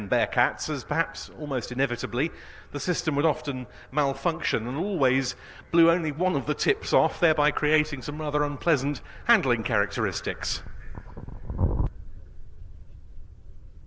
Bearcats, as perhaps almost inevitably the system would often malfunction and always blew only one of the tips off, thereby creating some rather unpleasant handling characteristics.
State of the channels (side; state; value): both; identical; correlation 1.00